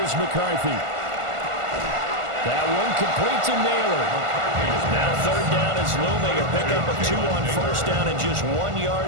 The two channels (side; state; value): left; late; 1.5 ms